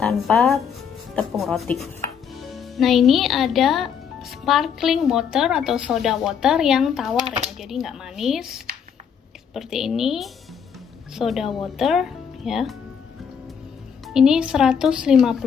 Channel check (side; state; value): right; quieter; 7.3 dB